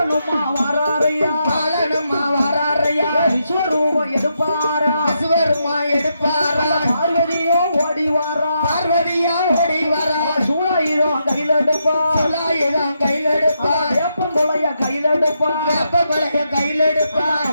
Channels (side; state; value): both; inverted; correlation -0.81